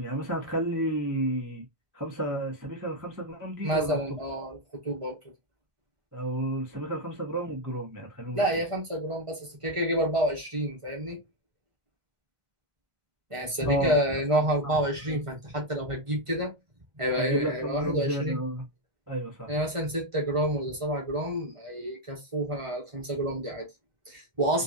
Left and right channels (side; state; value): left; late; 1.5 ms